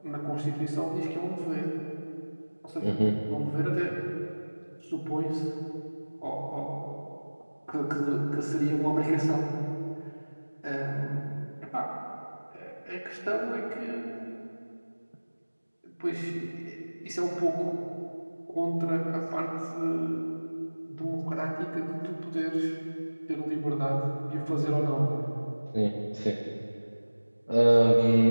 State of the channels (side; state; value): both; inverted; correlation -1.00